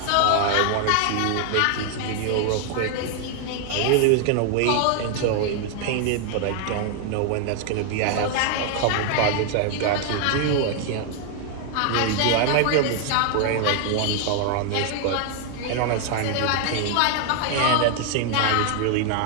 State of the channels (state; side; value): different; both; correlation 0.00